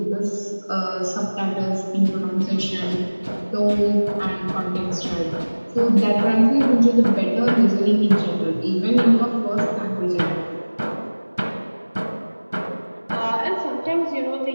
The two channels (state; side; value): inverted; both; correlation -1.00